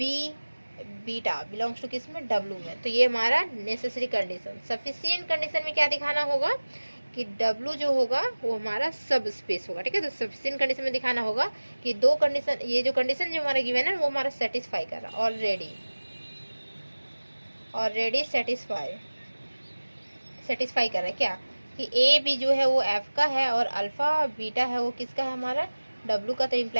beta belongs to किस में? डब्ल्यू में। तो ये हमारा नेसेसरी कंडीशन। सफिशिएंट कंडीशन में क्या दिखाना होगा कि डब्ल्यू जो होगा वो हमारा सब स्पेस होगा, ठीक है। तो सफिशिएंट कंडीशन में दिखाना होगा कि दो कंडीशन, ये जो कंडीशन जो हमारा गिवन है वो हमारा सेटिस्फाई कर रहा है ऑलरेडी सेटिस्फाई कर रहा है। क्या कि ए बी जो है वो एफ का है, और अल्फा बीटा है वो किसका है? हमारा डब्ल्यू का। तो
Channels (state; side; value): inverted; both; correlation -1.00